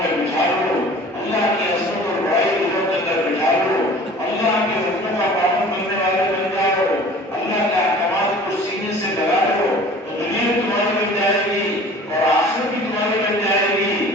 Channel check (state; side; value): normal; both; correlation 0.45